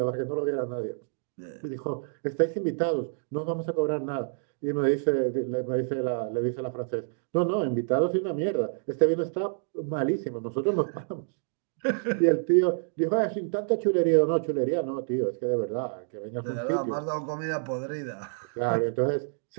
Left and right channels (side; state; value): left; silent; digital silence